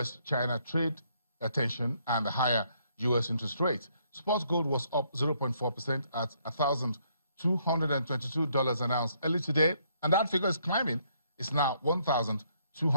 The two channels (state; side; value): inverted; both; correlation -0.70